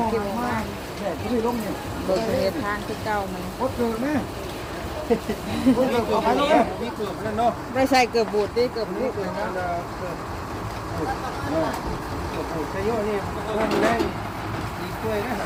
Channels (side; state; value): both; identical; correlation 1.00